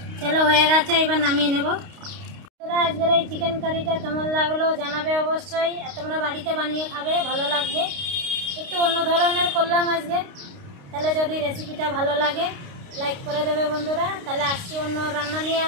চলো হয়ে গেছে, এবার নামিয়ে নেব। আজকের এই চিকেন কারিটা কেমন লাগলো জানাবে অবশ্যই। আর তোমরা বাড়িতে বানিয়ে খাবে, ভালো লাগবে। একটু অন্য ধরনের করলাম আজকে। তাহলে যদি রেসিপিটা ভালো লাগে লাইক করে দেবে বন্ধুরা। তাহলে আসছি অন্য রান্না নিয়ে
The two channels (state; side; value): late; left; 29 ms